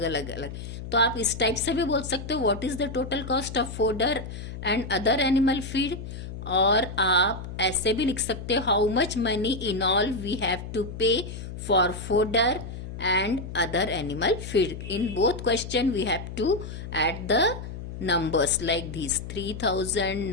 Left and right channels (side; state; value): left; noise; hum, 9 dB below the sound